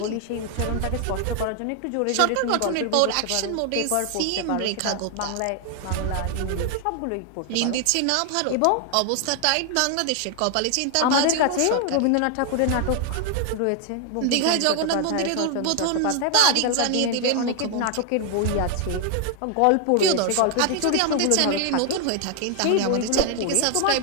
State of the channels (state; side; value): different; both; correlation 0.00